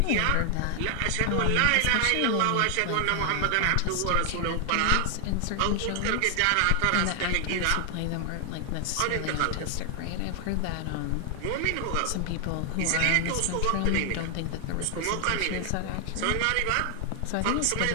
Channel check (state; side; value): different; both; correlation 0.00